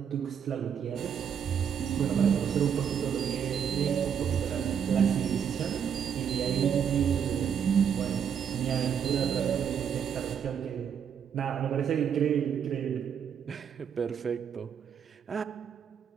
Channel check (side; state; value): left; quieter; 7.9 dB